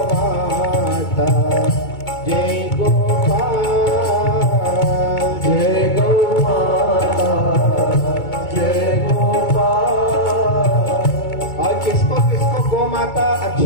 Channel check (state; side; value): late; right; 2.2 ms